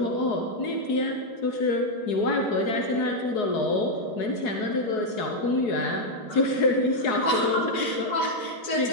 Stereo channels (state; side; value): late; right; 4.7 ms